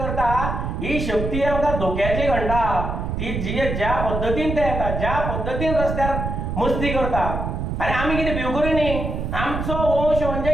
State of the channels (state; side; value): noise; right; rumble, 3 dB below the sound